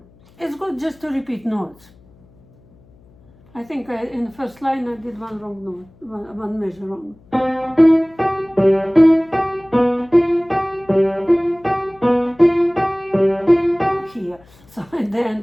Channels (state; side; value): noise; left; hum, 28 dB below the sound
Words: is good just to repeat notes. I think in the first line I did one wrong note, one measure wrong. Here, so at the